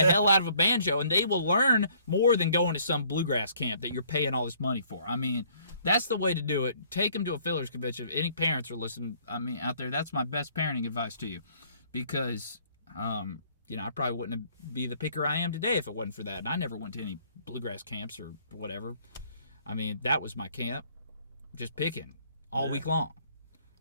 out of a banjo, and they will learn more than going to some bluegrass camp that you're paying all this money for. I mean, that's the way to do it. Take them to a Fillers Convention. If any parents are listening, out there, that's my best parenting advice to you, because I probably wouldn't be the picker I am today if it wasn't for that. And I never went to any bluegrass camps or whatever. I mean, that was my camp. Just picking all week long,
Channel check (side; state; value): both; inverted; correlation -0.60